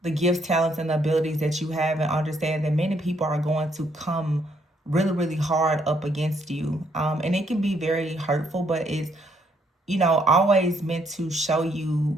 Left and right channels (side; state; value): both; normal; correlation 0.70